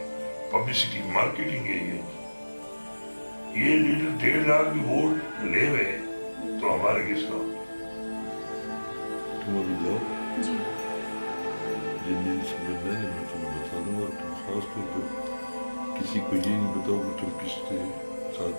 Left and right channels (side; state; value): both; inverted; correlation -1.00